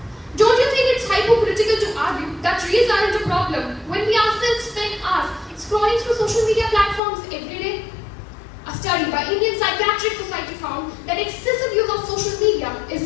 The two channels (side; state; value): right; drops out; at 7.0 s